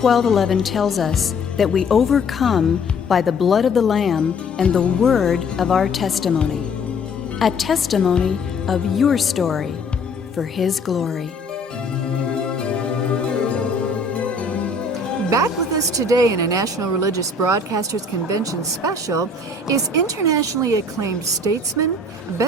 tells us that we overcome by the blood of the Lamb and the word of our testimony. A testimony of your story for His glory. Back with us today in a National Religious Broadcasters Convention special is internationally acclaimed statesman,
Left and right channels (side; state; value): right; quieter; 3.2 dB